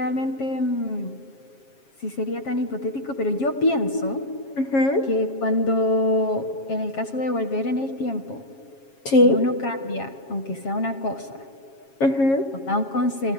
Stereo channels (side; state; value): right; late; 7.4 ms